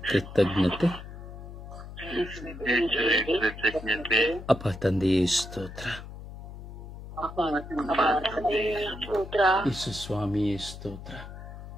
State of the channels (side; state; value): left; noise; hum, 12 dB below the sound